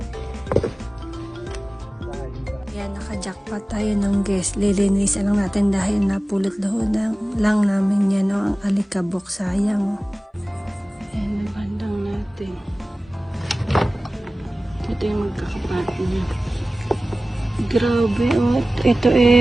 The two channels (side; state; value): both; normal; correlation 0.97